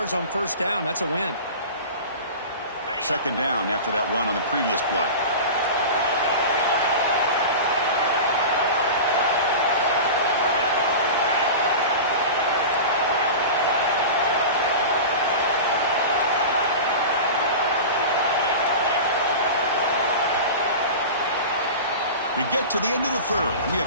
on first down, that's a win. 2nd down after that run on the previous play. We get to the end of the third, and we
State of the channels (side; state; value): both; inverted; correlation -0.31